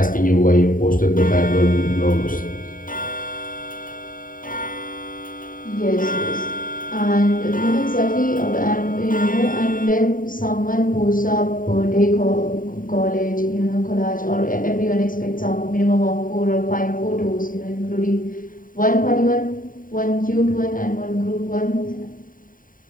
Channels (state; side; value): late; right; 0.40 ms